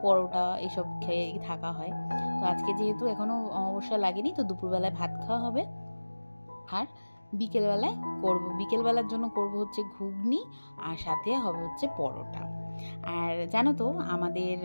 পরোটা এসব খেয়ে থাকা হয়। তো আজকে যেহেতু এখনও অমাবস্যা লাগেনি, তো দুপুরবেলায় ভাত খাওয়া হবে। আর বিকেলবেলার জন্য করব হচ্ছে ঘুগনি, আর সাথে হবে হচ্ছে পরোটা। আর জানো তো, আমাদের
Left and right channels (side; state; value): both; inverted; correlation -1.00